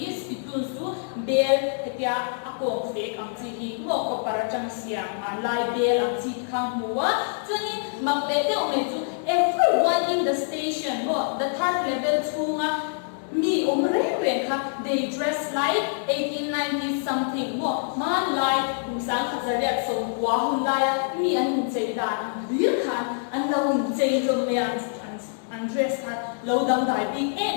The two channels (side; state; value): right; silent; digital silence